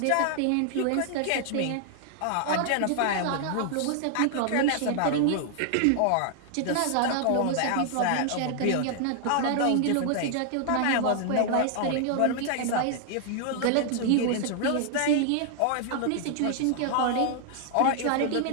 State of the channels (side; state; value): both; different; correlation 0.00